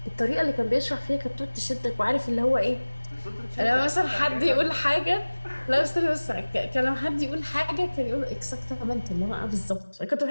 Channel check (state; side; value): inverted; both; correlation -1.00